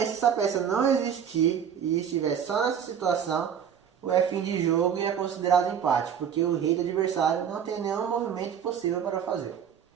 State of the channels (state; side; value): quieter; left; 8.2 dB